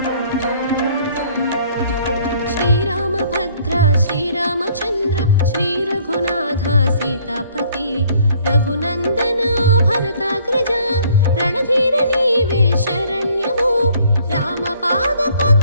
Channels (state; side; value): inverted; both; correlation -0.60